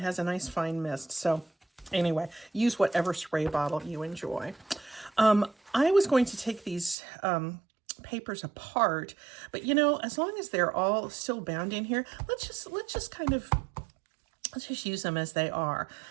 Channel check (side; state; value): left; drops out; at 7.0 s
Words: has a nice fine mist. So anyway, use whatever spray bottle you enjoy. I was going to take these papers apart, but as long as they're all still bound in here, let's just use them as they are.